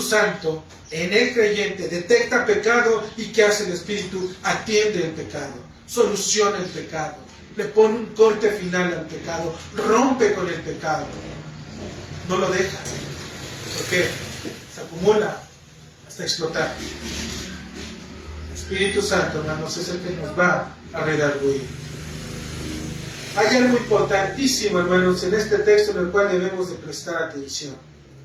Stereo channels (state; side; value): identical; both; correlation 1.00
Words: Santo en el creyente detecta pecado y ¿qué hace el Espíritu? Atiende el pecado, soluciona el pecado, le pone un corte final al pecado, rompe con el pecado, no lo deja, porque se acumula hasta explotar. El Espíritu Santo, hermanos, es el que nos va a redarguir. Hay algo importantísimo, hermanos, en este texto en el cual debemos de prestar atención.